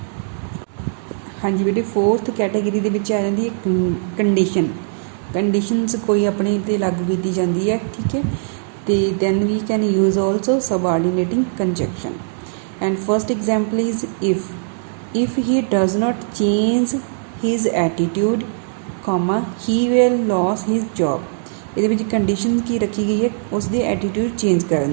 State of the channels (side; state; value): left; silent; digital silence